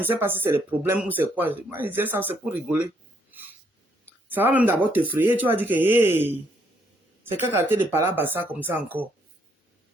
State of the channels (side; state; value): both; normal; correlation 0.72